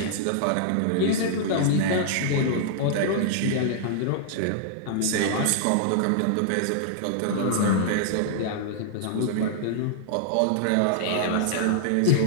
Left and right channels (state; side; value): different; both; correlation -0.01